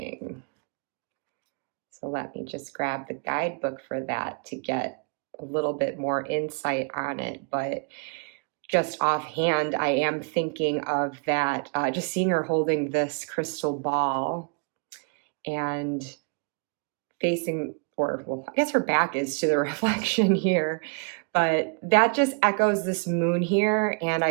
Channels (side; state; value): left; quieter; 39.8 dB